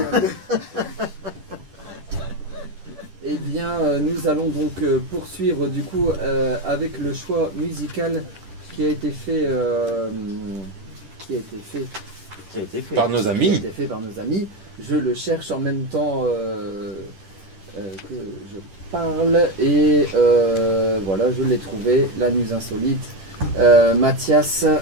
Eh bien, nous allons donc poursuivre du coup avec le choix musical qui a été fait, Par nos amis. Qui a été fait par nos amis. Je le cherche en même temps que je parle et voilà, je l'ai trouvé. La Muse Insolite, Mathias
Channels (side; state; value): left; late; 10 ms